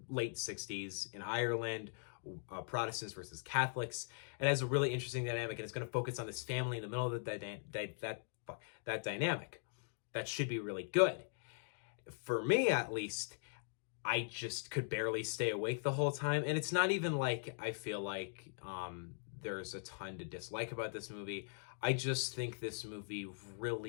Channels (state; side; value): silent; right; digital silence